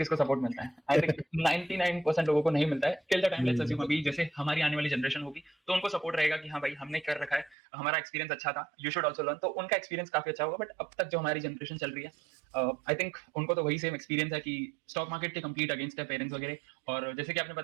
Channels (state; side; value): drops out; left; at 7.6 s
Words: सपोर्ट मिलता है? आई थिंक 99% लोगों को नहीं मिलता है till the time. Let's assume अभी जैसे हमारी आने वाली जनरेशन होगी तो उनको सपोर्ट रहेगा कि हाँ भाई हमने कर रखा है, हमारा एक्सपीरियंस अच्छा था, यू शुड ऑल्सो लर्न. तो उनका एक्सपीरियंस काफी अच्छा होगा. बट अब तक जो हमारी जनरेशन चल रही है, आई थिंक उनको तो वही सेम एक्सपीरियंस है कि स्टॉक मार्केट के कंप्लीट अगेंस्ट है पेरेंट्स वगैरह. और जैसे कि आपने